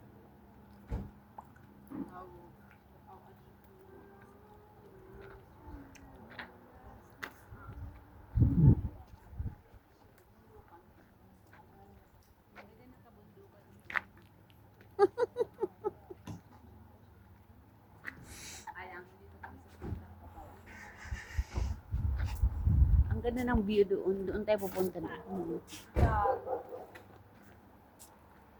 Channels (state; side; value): identical; both; correlation 1.00